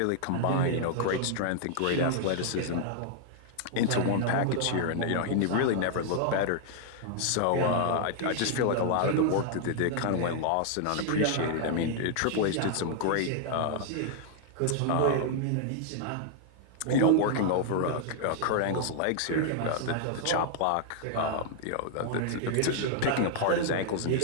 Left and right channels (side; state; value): both; different; correlation -0.01